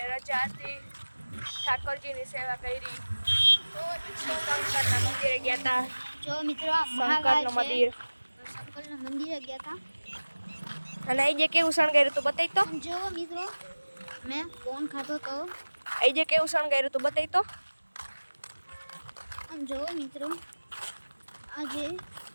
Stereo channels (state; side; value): inverted; both; correlation -1.00